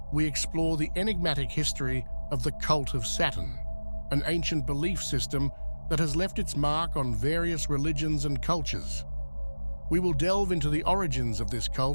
we explore the enigmatic history of the Cult of Saturn, an ancient belief system that has left its mark on various religions and cultures. We will delve into the origins of this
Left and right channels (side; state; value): both; inverted; correlation -1.00